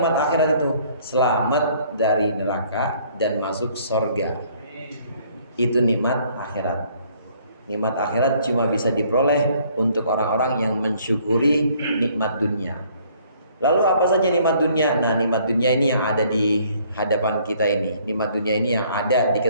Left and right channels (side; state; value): both; inverted; correlation -0.61